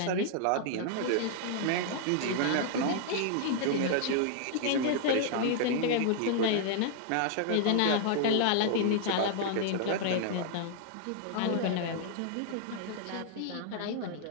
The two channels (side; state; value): both; different; correlation 0.00